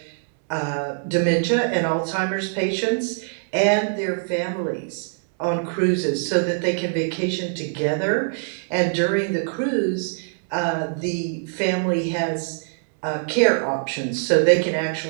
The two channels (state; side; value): silent; left; digital silence